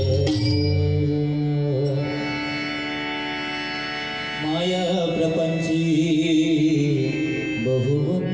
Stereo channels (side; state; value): left; noise; hum, 24 dB below the sound